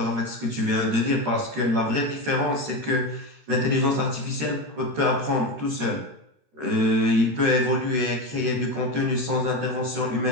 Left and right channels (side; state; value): left; late; 13 ms